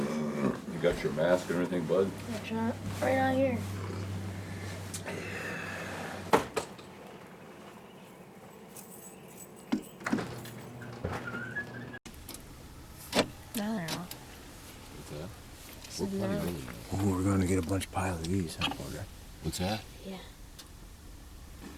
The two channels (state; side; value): identical; both; correlation 1.00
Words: got your mask and everything, bud? That's right out here. No, they're not. What's that? So We're plenty no. early now. Oh, we're gonna get a bunch of pile of these, I wonder. What's that? Yeah.